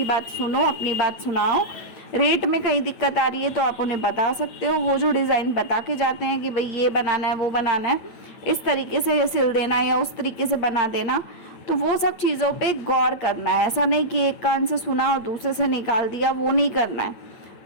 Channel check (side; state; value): right; late; 8.7 ms